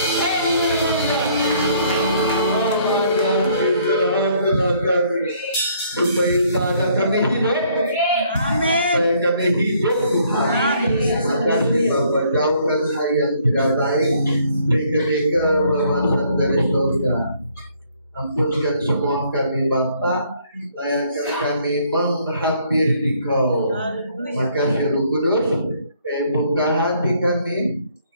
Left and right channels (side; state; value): both; inverted; correlation -0.64